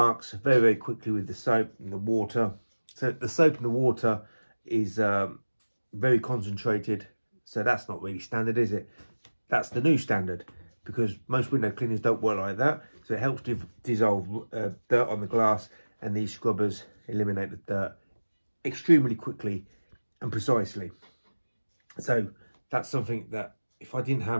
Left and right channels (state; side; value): inverted; both; correlation -1.00